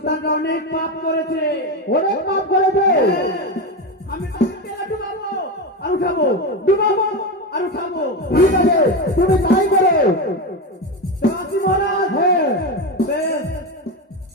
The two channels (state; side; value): normal; both; correlation 0.17